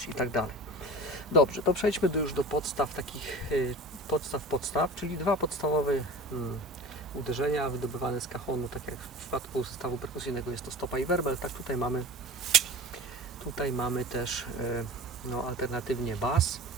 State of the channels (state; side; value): normal; both; correlation 0.36